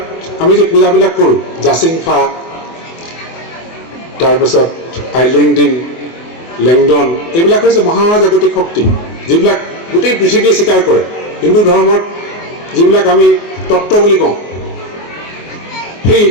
আমি যে পূজাবিলাক কৰোঁ জাচিংফা তাৰপিছত আইলেংডিন লেংডন এইবিলাক হৈছে মহাজাগতিক শক্তি যিবিলাক গোটেই পৃথিৱীয়ে স্বীকাৰ কৰে। হিন্দু ধৰ্মত যিবিলাক আমি তত্ত্ব বুলি কওঁ সেই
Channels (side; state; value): right; late; 24 ms